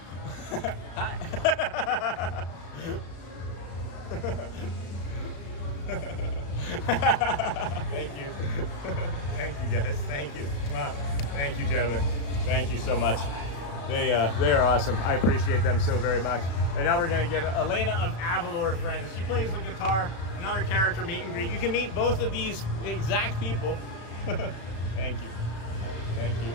Hi. Thank you. Thank you, guys. Thank you. Thank you, gentlemen. Thank you so much. They are awesome. I appreciate them so very much. And now we're going to get Elena of Avalor, friends. She plays the guitar. Another character meet and greet. You can meet both of these exact people. Thank you. Thank you.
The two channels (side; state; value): right; late; 35 ms